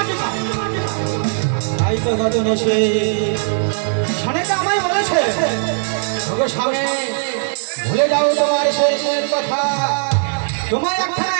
তাই তো গজন এসে সানেটা আমায় বলেছে, ওগো স্বামী ভুলে যাও তোমার শেষের কথা, তোমার একটা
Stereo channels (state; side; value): silent; left; digital silence